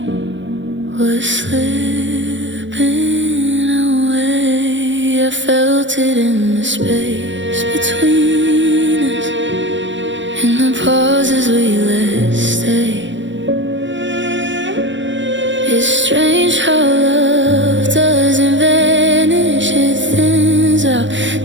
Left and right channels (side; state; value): left; late; 0.54 ms